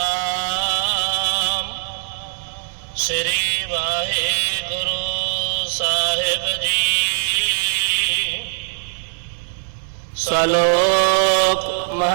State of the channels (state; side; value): silent; left; 64 dB below the other